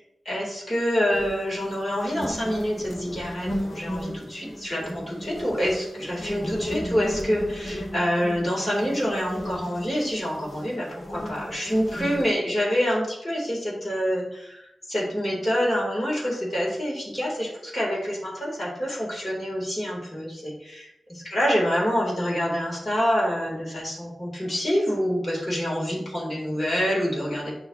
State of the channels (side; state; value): both; normal; correlation 0.94